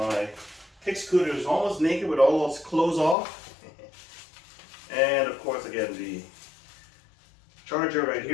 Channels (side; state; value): right; drops out; at 3.2 s